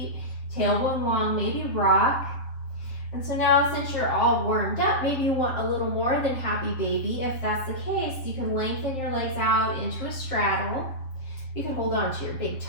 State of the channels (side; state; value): right; late; 7.4 ms